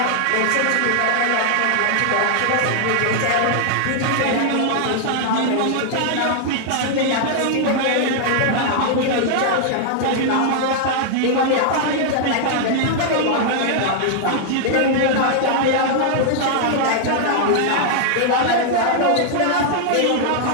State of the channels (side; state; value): both; different; correlation -0.01